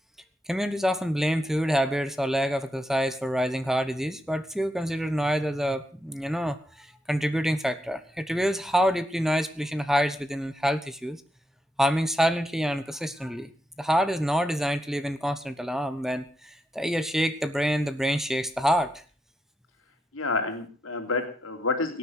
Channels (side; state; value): both; normal; correlation 0.82